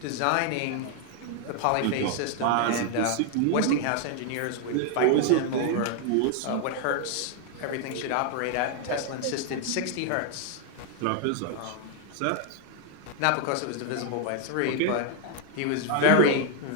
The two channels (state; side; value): different; both; correlation 0.00